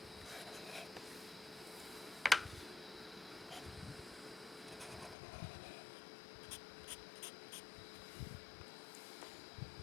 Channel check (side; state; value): right; drops out; at 5.2 s